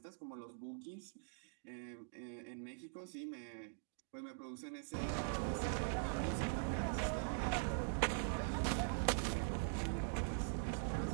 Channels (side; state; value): left; silent; digital silence